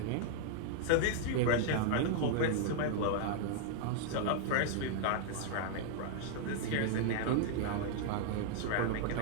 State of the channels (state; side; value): different; both; correlation -0.01